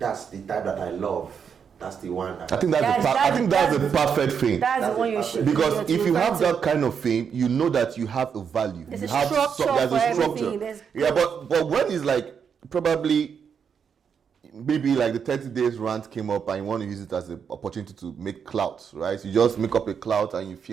the type that I love. That's the one. I think that's the perfect fame. That's the one you should. Because if you have that kind of fame, you know that you have a value. There's you a have structure there's for a everything. structure. Yeah, but when it's like probably maybe like the 30 days rant came up and you want to use it as an opportunity to make clout, right? So you just make up a clout and you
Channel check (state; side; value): quieter; left; 7.0 dB